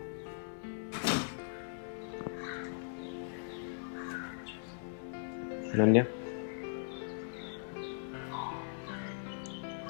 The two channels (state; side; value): silent; right; digital silence